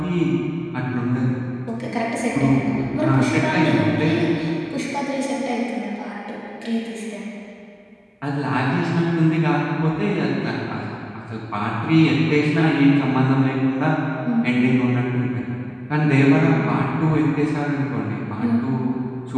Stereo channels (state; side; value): identical; both; correlation 1.00